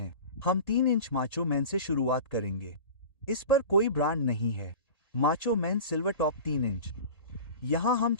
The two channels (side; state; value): right; late; 1.8 ms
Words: हम 3 इंच माचो मैन से शुरुआत करेंगे। इस पर कोई ब्रांड नहीं है। Macho man silver top 3 inch. यहाँ हम